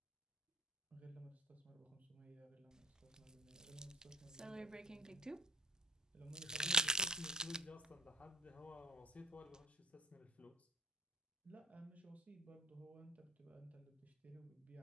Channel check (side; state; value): both; normal; correlation 0.48